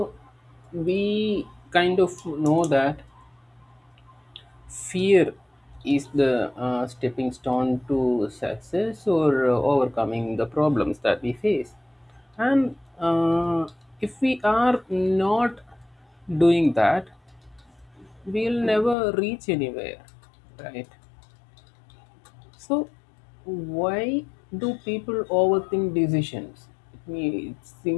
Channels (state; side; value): drops out; right; at 18.9 s